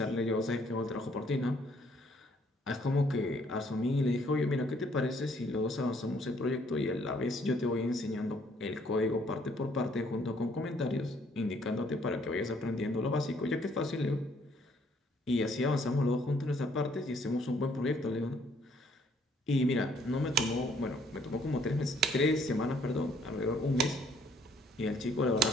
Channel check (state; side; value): normal; both; correlation 0.64